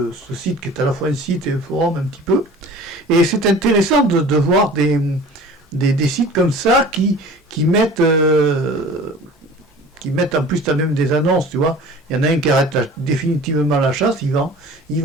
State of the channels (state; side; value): normal; both; correlation 0.43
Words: site qui est à la fois un site et un forum un petit peu. Et c'est intéressant de voir des sites comme ça qui mettent en plus t'as même des annonces, tu vois. Il y en a un qui arrête définitivement la chasse, il vend,